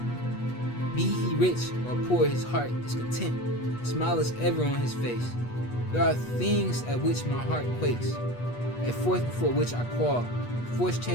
Be he rich or poor, his heart is content. A smile is ever on his face. There are things at which my heart quakes, a fourth before which I qual. Forced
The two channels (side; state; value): right; late; 8.3 ms